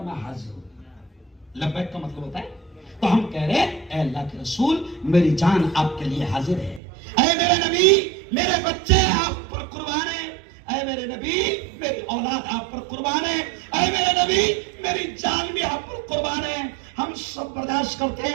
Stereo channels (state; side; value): drops out; left; at 6.8 s